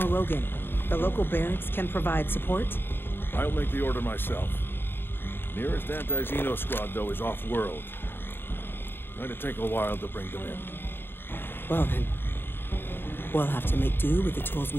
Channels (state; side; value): late; right; 0.10 ms